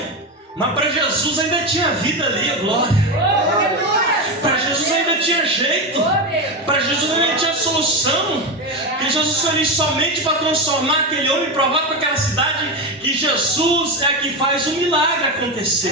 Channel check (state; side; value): normal; both; correlation 0.15